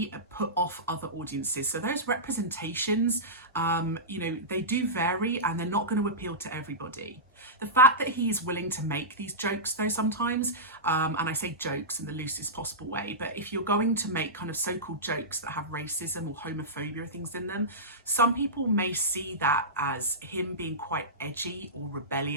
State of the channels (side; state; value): both; normal; correlation -0.16